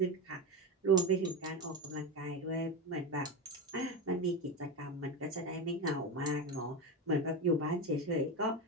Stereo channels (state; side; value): normal; both; correlation 0.17